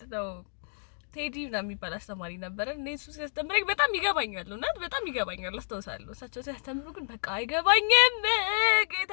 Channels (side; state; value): right; silent; digital silence